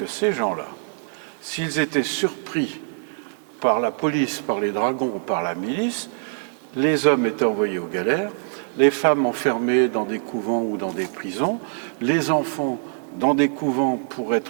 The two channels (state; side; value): silent; left; digital silence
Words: ces gens-là, s'ils étaient surpris par la police, par les dragons ou par la milice, les hommes étaient envoyés aux galères, les femmes enfermées dans des couvents ou dans des prisons, les enfants dans des couvents pour